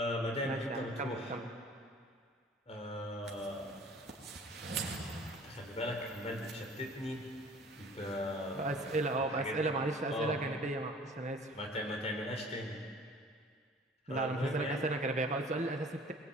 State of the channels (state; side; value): normal; both; correlation 0.49